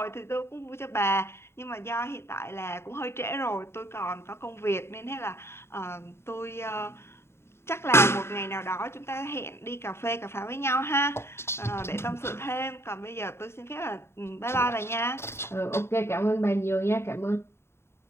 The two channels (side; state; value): right; late; 0.12 ms